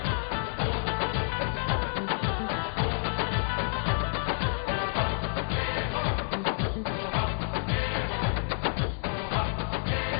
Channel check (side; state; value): right; silent; 58 dB below the other